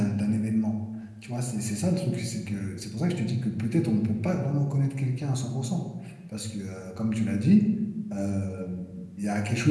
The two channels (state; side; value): identical; both; correlation 1.00